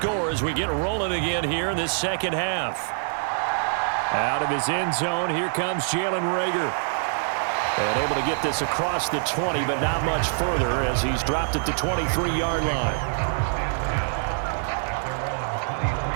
as we get rolling again here in this second half. Out of his end zone, here comes Jalen Reagor. And able to get this across the 20, but not much further as he's dropped at the 23-yard line.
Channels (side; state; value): left; silent; digital silence